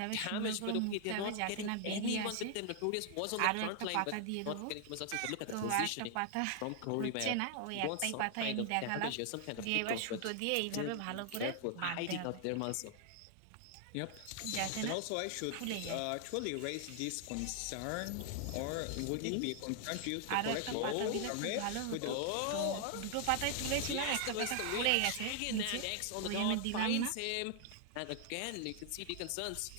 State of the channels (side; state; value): both; different; correlation 0.00